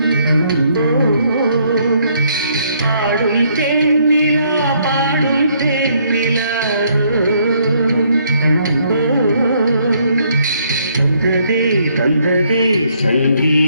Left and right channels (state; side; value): inverted; both; correlation -0.69